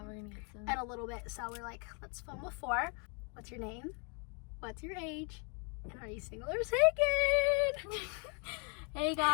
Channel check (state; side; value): quieter; right; 36.1 dB